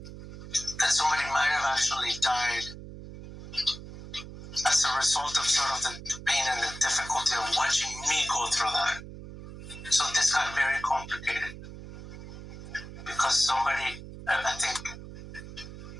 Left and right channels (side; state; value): right; noise; hum, 13 dB below the sound